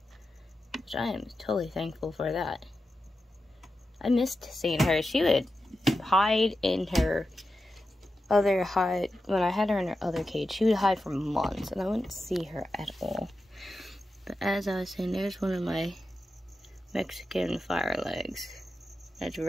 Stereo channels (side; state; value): both; normal; correlation 0.90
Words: which I am totally thankful for that. I missed seeing her. She would hide in her other hide. When I had her in her other cage, she would hide for months, and I wouldn't see her at all. But as I was saying, there's one of my Mexican fire legs. That's